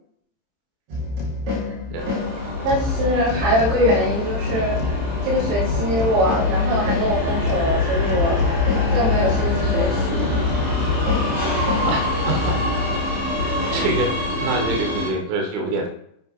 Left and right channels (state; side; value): late; left; 27 ms